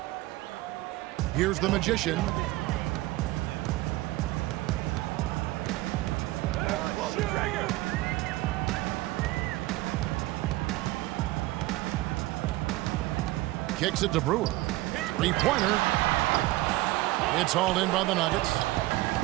Here's the Magician. Kicks it to Brewer. Three-pointer. It's hauled in by the Nuggets.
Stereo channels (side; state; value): left; quieter; 18.5 dB